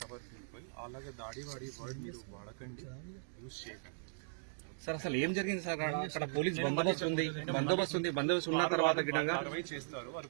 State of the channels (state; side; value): silent; left; digital silence